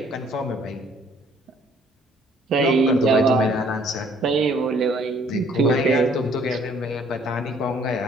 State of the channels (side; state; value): both; normal; correlation 0.61